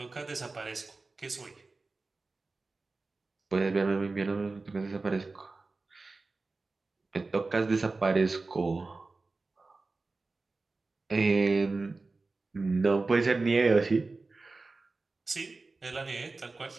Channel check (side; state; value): left; quieter; 3.6 dB